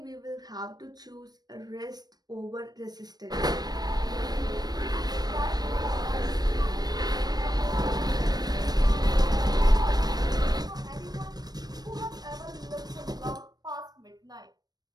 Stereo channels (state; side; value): late; left; 0.19 ms